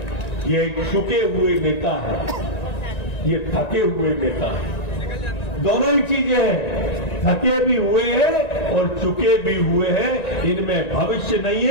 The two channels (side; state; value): right; late; 1.9 ms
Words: ये चुके हुए नेता है, ये थके हुए नेता है, दोनों ही चीजें हैं। थके भी हुए हैं और चुके भी हुए हैं, इनमें भविष्य नहीं